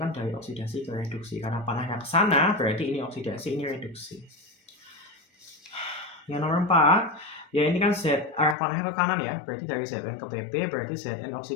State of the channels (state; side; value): drops out; right; at 8.6 s